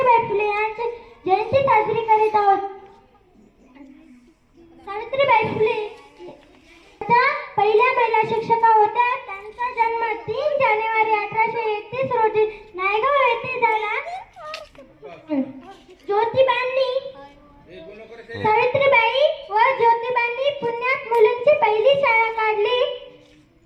फुले यांची जयंती साजरी करीत आहोत। सावित्रीबाई फुले पहिल्या महिला शिक्षिका होत्या। त्यांचा जन्म 3 जानेवारी 1831 रोजी नायगाव येथे झाला। सावित्रीबाई व ज्योतिबांनी पुण्यात मुलींची पहिली शाळा काढली।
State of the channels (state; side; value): identical; both; correlation 1.00